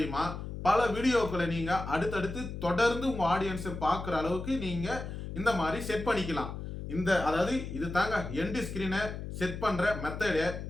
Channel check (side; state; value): left; noise; hum, 7 dB below the sound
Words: பல வீடியோக்களை நீங்கள் அடுத்தடுத்து தொடர்ந்து உங்கள் ஆடியன்ஸை பார்க்குற அளவுக்கு நீங்கள் இந்த மாதிரி செட் பண்ணிக்கலாம். அதாவது இது தாங்க எண்ட் ஸ்க்ரீனை செட் பண்ணுற மெத்தடு.